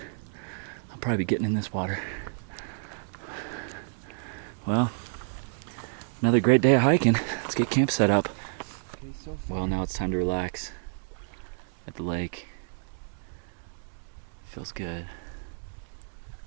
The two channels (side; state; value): left; silent; digital silence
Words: I'll probably be getting in this water. Well, another great day of hiking. Let's get camp set up. Well, now it's time to relax at the lake. Feels good.